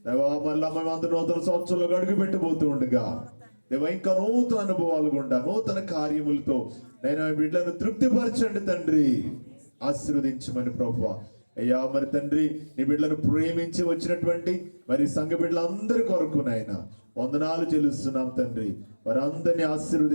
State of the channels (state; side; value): inverted; both; correlation -1.00